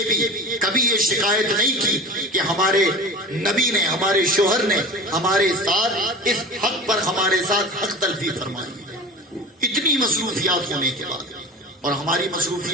بھی کبھی یہ شکایت نہیں کی کہ ہمارے نبی نے، ہمارے شوہر نے ہمارے ساتھ اس حق پر ہمارے ساتھ حق تلفی فرمائی. اتنی مصروفیات ہونے کے بعد، اور ہماری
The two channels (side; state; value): both; normal; correlation 0.35